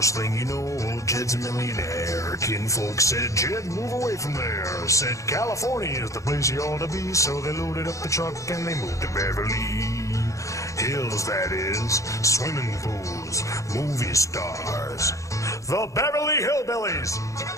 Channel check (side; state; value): right; late; 0.15 ms